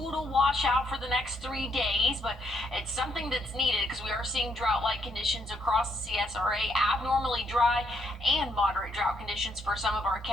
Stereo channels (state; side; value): normal; both; correlation 0.74